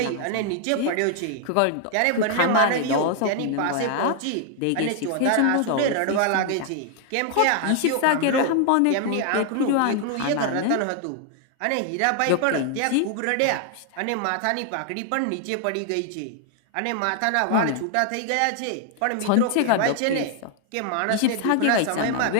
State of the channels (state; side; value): different; both; correlation 0.00